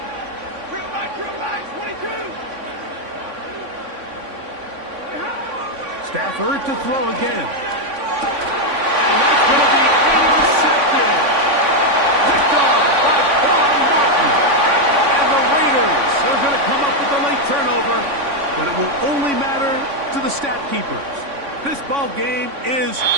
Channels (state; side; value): late; left; 3.5 ms